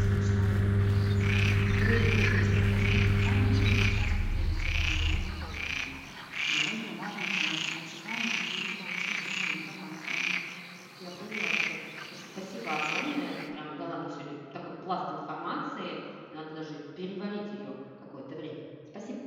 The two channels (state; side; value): identical; both; correlation 1.00